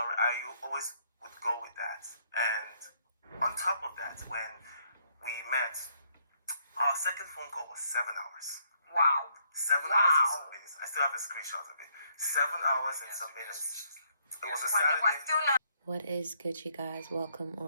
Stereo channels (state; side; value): inverted; both; correlation -0.70